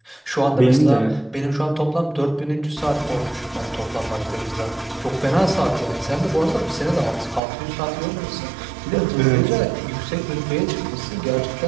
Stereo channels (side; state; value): left; drops out; at 7.4 s